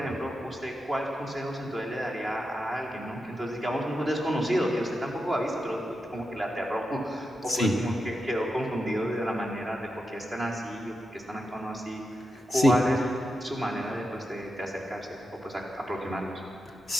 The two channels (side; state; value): both; normal; correlation 0.88